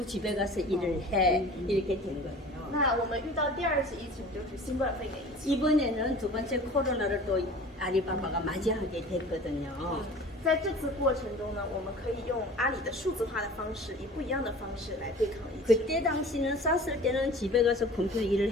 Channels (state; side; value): normal; both; correlation 0.43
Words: 집에 가서 일을 해 이렇게 된 거예요. 那我们遇到第2次疫情就是新冠肺炎疫情。 이번에는 두 번째 코로나를 또 아리바바가 맞이하게 됐거든요. 在这次过程中呢，我们可以用阿里的数字化的方式，以不一样的方式来对抗疫情。 그때 당시는 쌌을 때는 집에 가서 컴퓨터 일을